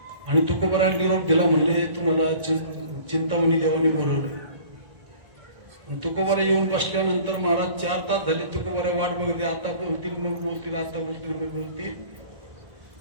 आणि तुकोबाराला निरोप दिला म्हणले तुम्हाला चिंतामणी देवाने बोलवलं. तुकोबारा येऊन बसल्यानंतर महाराज 4 तास झाले तुकोबारा वाट बघते. आता बोलतील मग बोलतील आता बोलतील मग बोलतील.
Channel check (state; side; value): late; left; 1.8 ms